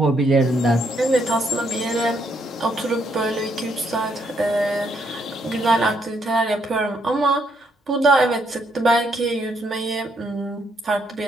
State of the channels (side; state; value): both; normal; correlation 0.74